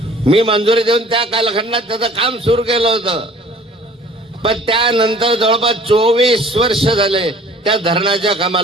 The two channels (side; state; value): both; normal; correlation 0.51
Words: मी मंजुरी देऊन त्या कालखंडात त्याचं काम सुरू केलं होतं. पण त्यानंतर जवळपास 24 वर्ष झाले त्या धरणाच्या